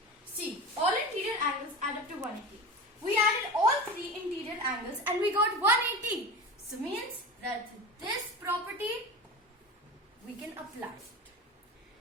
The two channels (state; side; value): normal; both; correlation 0.30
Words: See, all interior angles add up to 180. We added all three interior angles and we got 180. So means that this property we can apply it.